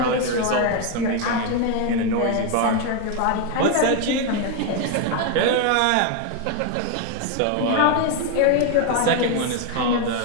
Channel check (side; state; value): both; different; correlation 0.01